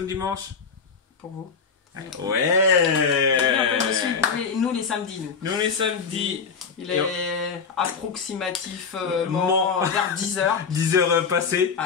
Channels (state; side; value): quieter; right; 5.6 dB